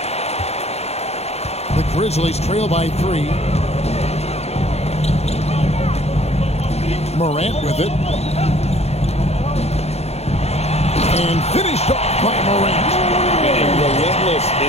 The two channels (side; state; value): right; late; 0.31 ms